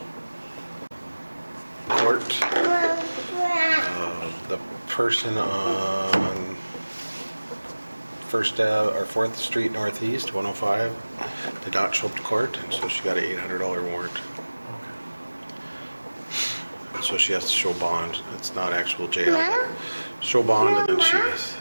court. The person on 4th Street Northeast, 105, did not show up to court, and so she got an $800 warrant. So she has to show bond. It's not actual jail. But show bond, and then she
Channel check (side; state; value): both; inverted; correlation -1.00